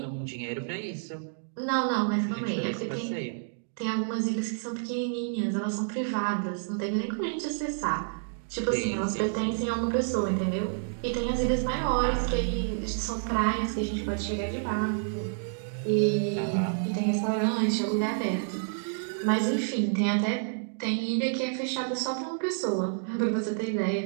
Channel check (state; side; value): silent; left; digital silence